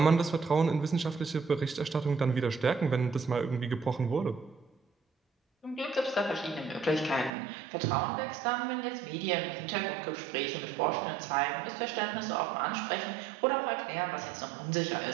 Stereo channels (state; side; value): drops out; left; at 7.3 s